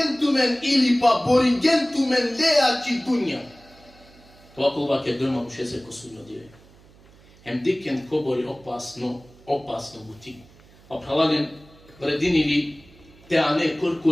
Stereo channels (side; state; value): right; noise; hum, 26 dB below the sound